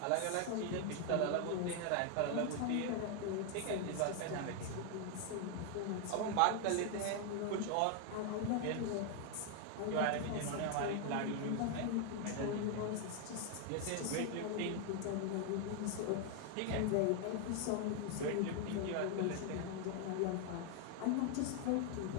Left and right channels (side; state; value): both; different; correlation 0.01